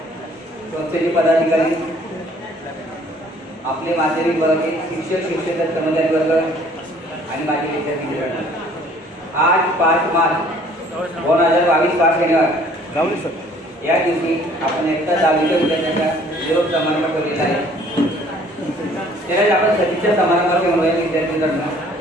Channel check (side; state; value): both; normal; correlation 0.56